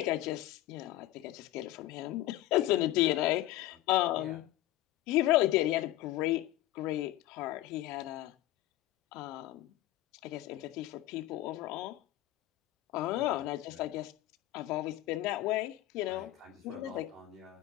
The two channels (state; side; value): quieter; right; 15.4 dB